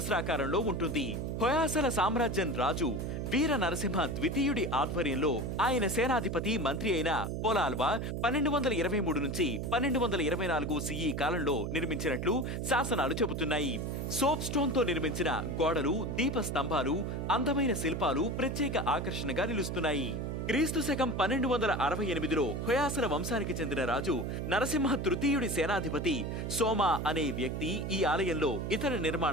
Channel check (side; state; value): right; noise; hum, 3 dB below the sound